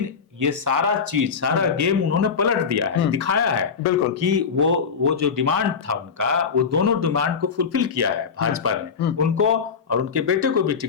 ये सारा गेम उन्होंने पलट दिया है, दिखाया है बिल्कुल कि वो जो डिमांड था उनका, वो दोनों डिमांड को फुलफिल किया है भाजपा ने। उनको और उनके बेटे को भी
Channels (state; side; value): quieter; right; 6.0 dB